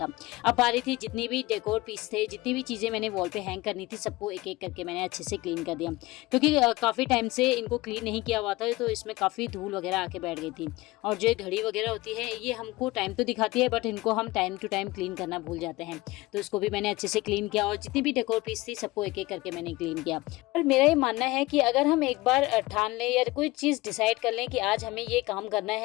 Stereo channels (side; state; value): right; quieter; 20.3 dB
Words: अब बारी थी जितनी भी डेकोर पीस थे, जितनी भी चीज़ें मैंने वॉल पे हैंग करनी थी, सबको एक एक करके मैंने अच्छे से क्लीन कर दिया, क्योंकि काफ़ी टाइम से इनको क्लीन नहीं किया हुआ था तो इसमें काफ़ी धूल वगैरह आके बैठ गई थी। और जो घड़ी वगैरह होती है ये हमको टाइम तो दिखाती है, बट इनको हम टाइम टू टाइम क्लीन करना भूल जाते हैं। तो इसको भी मैंने अच्छे से क्लीन किया, और जितनी भी डेकोर पीस थी सबको एक एक करके मैंने क्लीन किया। और मेरा ये मानना है कि अगर हम एक बार ठान लें या कोई चीज़ डिसाइड कर लें कि आज हमें ये काम करना